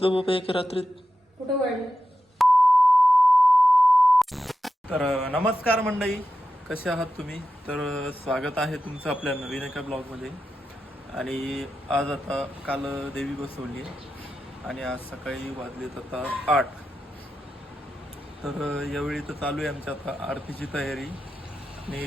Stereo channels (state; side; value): normal; both; correlation 0.91